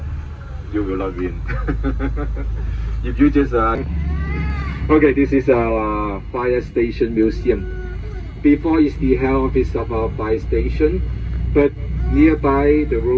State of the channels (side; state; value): both; identical; correlation 1.00